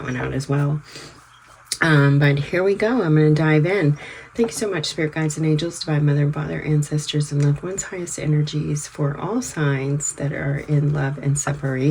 one out as well. But here we go. I'm going to dive in. Thank you so much, Spirit Guides and Angels, Divine Mother and Father, Ancestors, and Loved Ones, highest energies for all signs that are in love and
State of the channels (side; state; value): both; identical; correlation 1.00